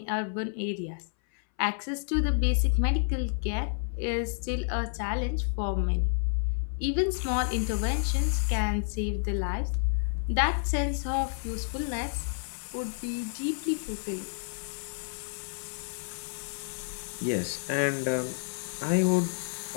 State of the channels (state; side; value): silent; right; 58 dB below the other